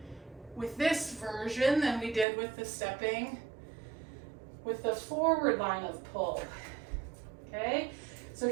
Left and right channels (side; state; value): left; drops out; at 2.2 s